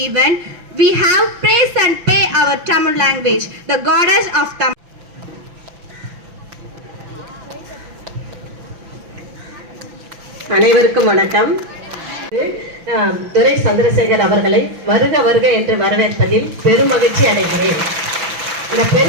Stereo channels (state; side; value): late; left; 6.0 ms